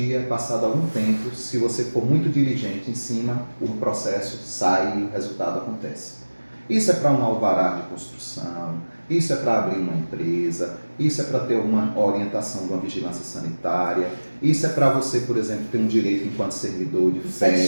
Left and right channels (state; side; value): inverted; both; correlation -1.00